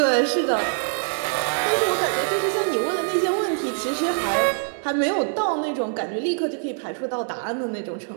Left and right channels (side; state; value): left; silent; digital silence